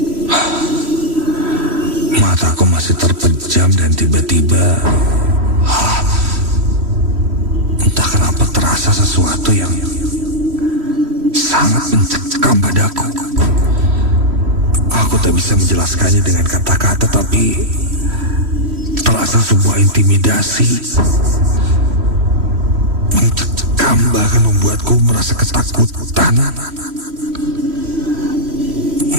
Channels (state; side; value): late; left; 3.1 ms